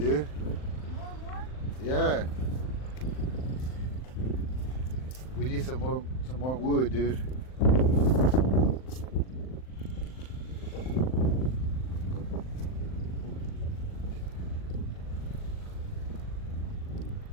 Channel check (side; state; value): right; late; 39 ms